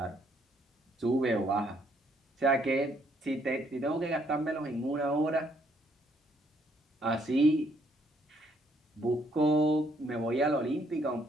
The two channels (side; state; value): both; normal; correlation 0.69